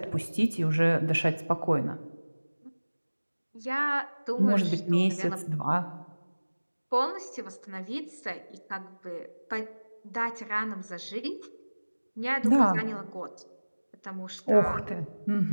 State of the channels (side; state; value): both; inverted; correlation -1.00